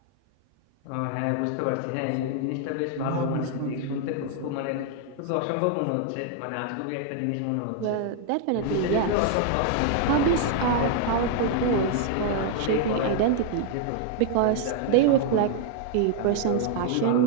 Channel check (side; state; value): both; different; correlation 0.00